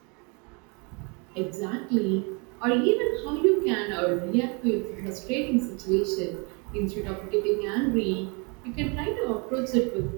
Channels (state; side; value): quieter; left; 32.2 dB